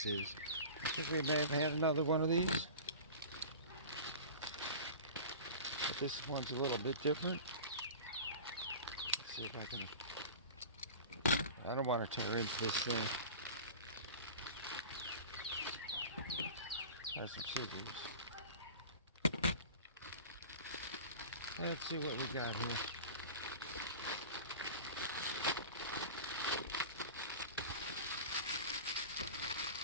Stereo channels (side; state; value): both; inverted; correlation -0.36